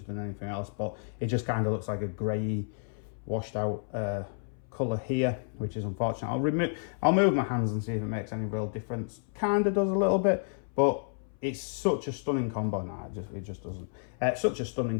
than anything else, but it just kind of looks like a grey, washed out colour here, which is unfortunate. I'll move my hands and see if it makes any real difference. Kind of does a little bit, but it's such a stunning combo. Nah, it just doesn't. Such a stunning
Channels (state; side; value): silent; right; 57 dB below the other